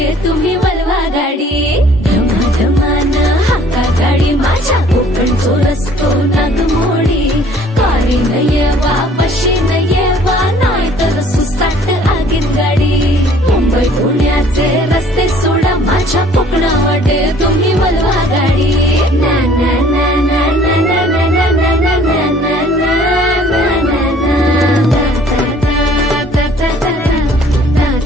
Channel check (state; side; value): normal; both; correlation 0.56